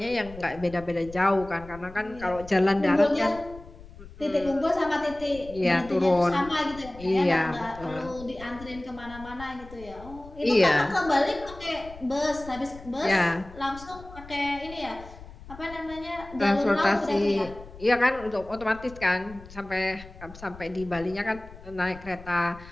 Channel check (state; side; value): noise; left; rumble, 17 dB below the sound